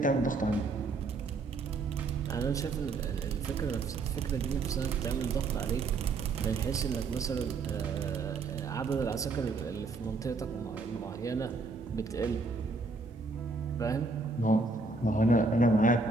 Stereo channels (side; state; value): left; quieter; 3.7 dB